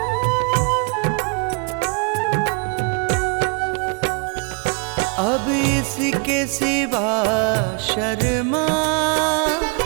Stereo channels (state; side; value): quieter; left; 36.8 dB